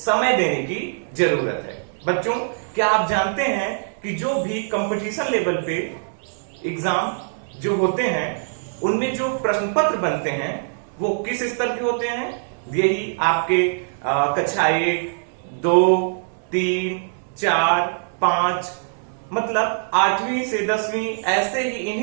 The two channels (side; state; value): left; silent; digital silence